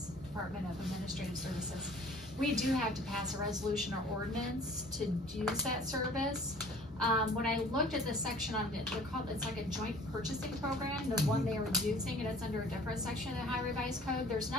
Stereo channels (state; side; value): normal; both; correlation 0.50